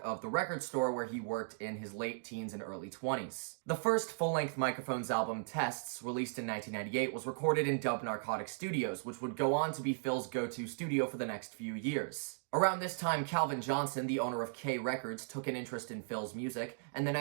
of the record store where he worked in his late teens and early 20s. The first full-length Microphones album, Tests, released in 1998, was recorded in Dub Narcotic Studios, which would go on to be Phil's go-to studio for the next few years. Around this time, Calvin Johnson, the owner of K Records, took an interest in Phil's music, and the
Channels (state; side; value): silent; left; digital silence